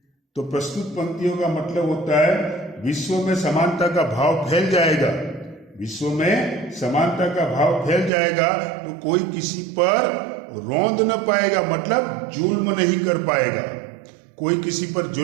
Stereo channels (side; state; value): left; drops out; at 8.1 s